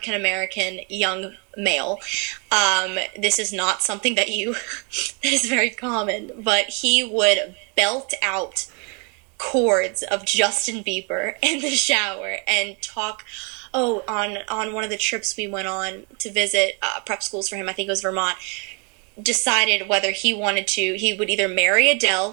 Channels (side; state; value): left; quieter; 34.5 dB